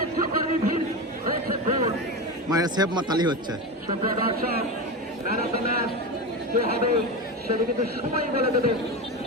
একটু করেনি ভিড় হয়েছে গোল মায়ের সেভ মাতালি হচ্ছে সুপ্রিয় দর্শক ম্যান অফ দ্য ম্যাচ কে হবে সেটা কিন্তু সময় বলে দেবে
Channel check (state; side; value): normal; both; correlation 0.21